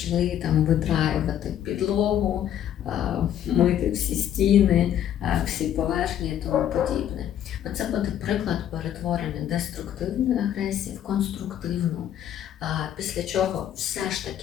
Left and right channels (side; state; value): right; quieter; 10.5 dB